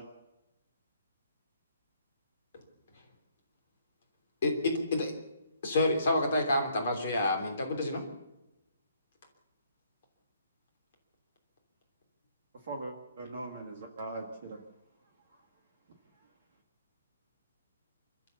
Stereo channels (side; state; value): both; inverted; correlation -0.66